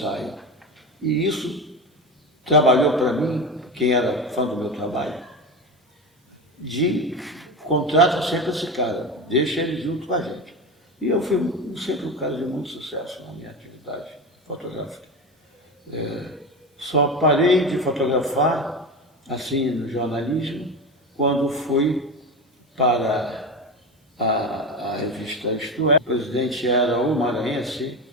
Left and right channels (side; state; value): both; normal; correlation 0.22